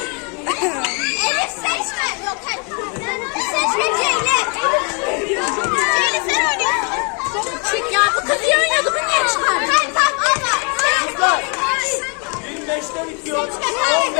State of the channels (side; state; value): right; quieter; 35.8 dB